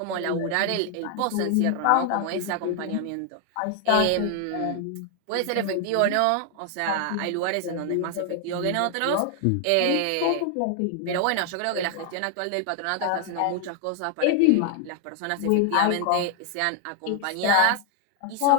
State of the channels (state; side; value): different; both; correlation 0.00